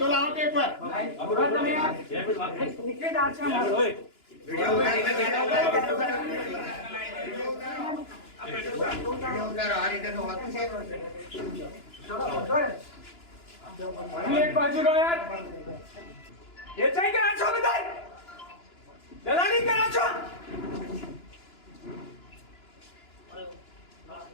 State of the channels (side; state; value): right; late; 2.9 ms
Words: लाओ एक बार एक बाजू लो यार ये चाहिए करा छो बताए दलाली करा छो